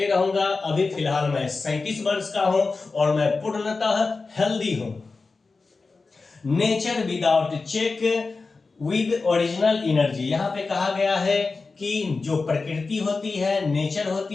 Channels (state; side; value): quieter; right; 4.0 dB